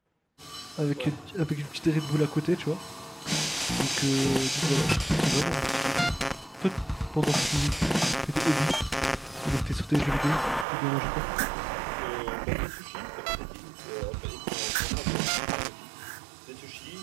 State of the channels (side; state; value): left; drops out; at 10.7 s